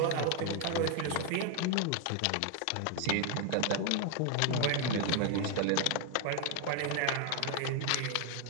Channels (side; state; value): both; different; correlation 0.01